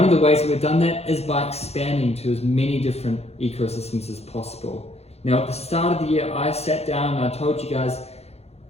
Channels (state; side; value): late; right; 0.30 ms